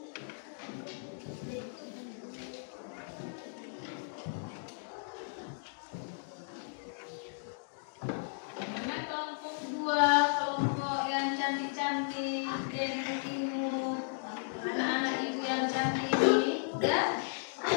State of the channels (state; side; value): silent; right; digital silence